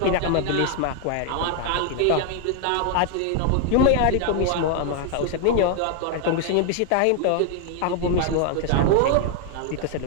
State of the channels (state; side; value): different; both; correlation 0.00